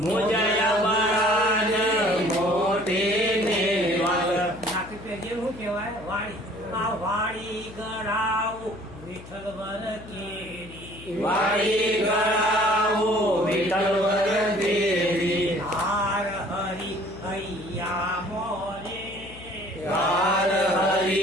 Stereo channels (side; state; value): left; noise; hum, 17 dB below the sound